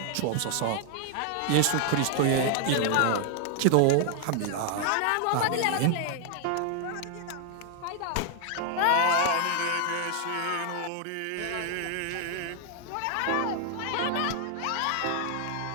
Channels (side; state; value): both; different; correlation 0.00